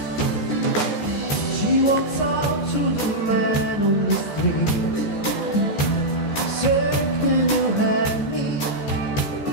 She walks out to the man on the street, circling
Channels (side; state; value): right; late; 14 ms